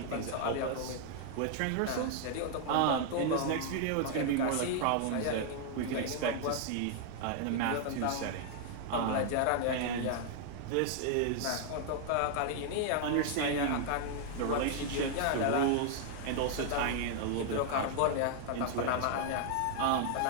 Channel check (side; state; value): both; different; correlation 0.00